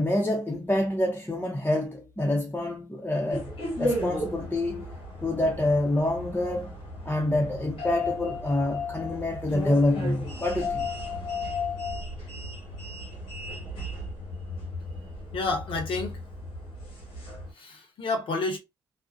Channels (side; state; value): both; normal; correlation 0.80